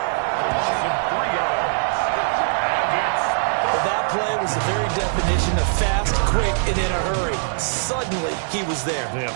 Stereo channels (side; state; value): left; silent; digital silence